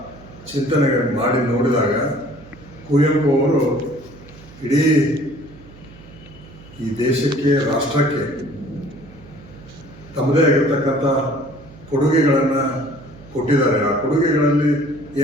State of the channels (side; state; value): right; noise; hum, 21 dB below the sound